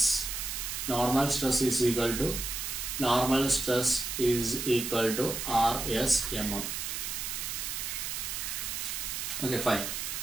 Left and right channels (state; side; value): noise; right; hiss, 4 dB below the sound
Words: Normal stress is equal to Rs mm. Okay, fine.